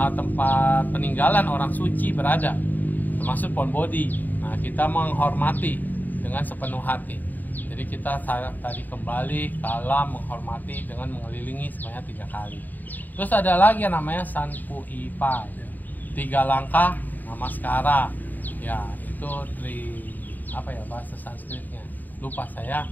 tempat peninggalan orang suci berada, termasuk pohon bodhi. Nah, kita menghormati dengan sepenuh hati. Jadi kita tadi kembali kalam menghormati dengan mengelilingi sebanyak 3 kali. Terus ada lagi yang namanya Sanpu Ipai, 3 langkah namaskara. Ya, itu bahasa Sanskritnya, lupa saya.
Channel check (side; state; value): right; late; 0.086 ms